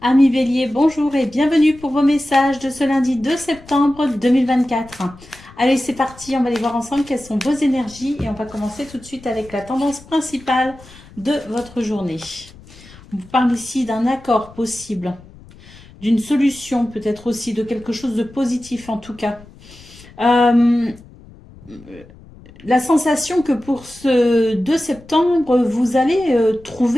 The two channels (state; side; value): noise; left; rumble, 22 dB below the sound